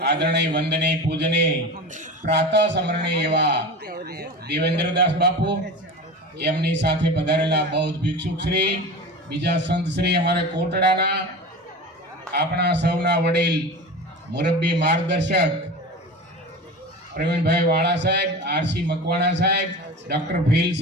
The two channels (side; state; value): both; normal; correlation 0.30